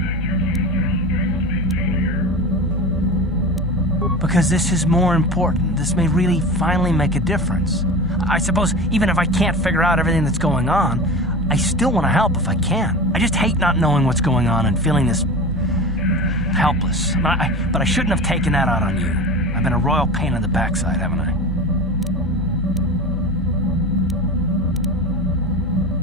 Because this is more important. This may really finally make a difference. I suppose even if I can't figure out everything that's going on, I still want to help if I can. I just hate not knowing what's going on and feeling this helpless. But I shouldn't have taken that out on you. I've been a royal pain in the backside, haven't I?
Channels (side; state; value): both; normal; correlation 0.30